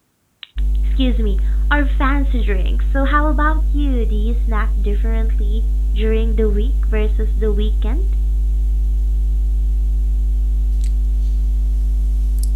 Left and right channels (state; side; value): identical; both; correlation 1.00